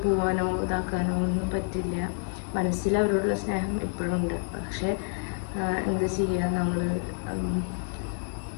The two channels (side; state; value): right; silent; digital silence